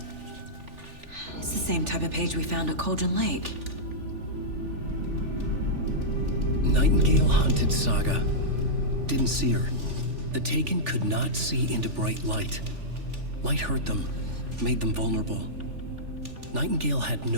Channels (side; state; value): left; late; 3.4 ms